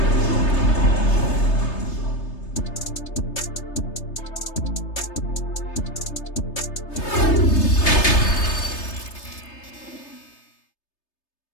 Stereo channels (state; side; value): late; right; 3.3 ms